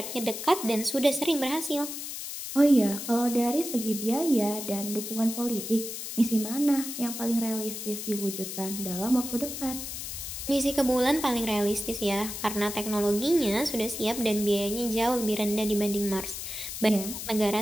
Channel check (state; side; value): noise; left; hiss, 7 dB below the sound